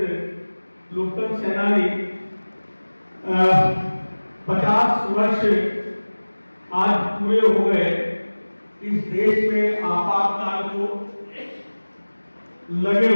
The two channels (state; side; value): inverted; both; correlation -1.00